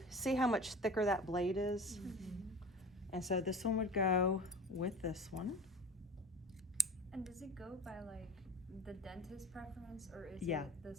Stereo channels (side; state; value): both; normal; correlation 0.35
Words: see how much thicker that blade is? Mm-hmm. And so this one would go with this one. And does it go by like the dentist preference, or is Yeah. it the